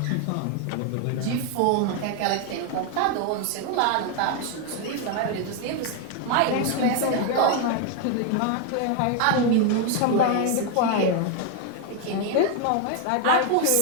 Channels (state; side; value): different; both; correlation 0.01